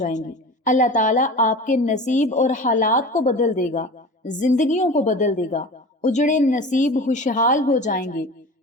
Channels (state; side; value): normal; both; correlation 0.35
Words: گی۔ اللہ تعالیٰ آپ کے نصیب اور حالات کو بدل دے گا، زندگیوں کو بدل دے گا۔ اجڑے نصیب خوشحال ہو جائیں گے،